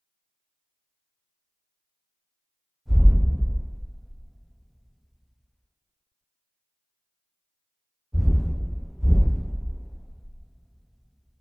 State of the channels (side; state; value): both; identical; correlation 1.00